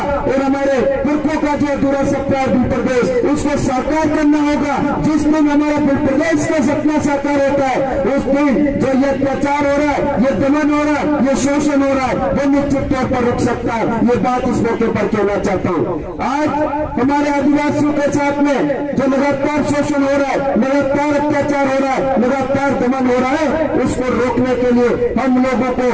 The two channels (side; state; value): both; identical; correlation 1.00